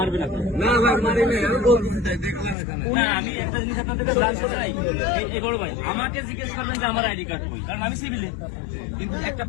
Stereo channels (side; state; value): right; drops out; at 2.6 s